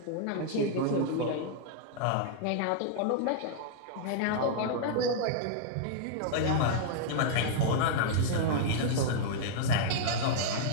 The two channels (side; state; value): both; different; correlation -0.01